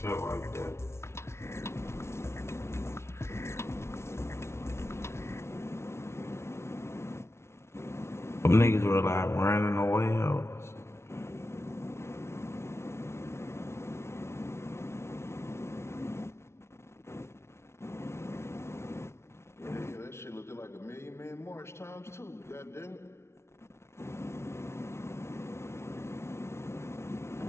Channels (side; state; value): right; late; 0.13 ms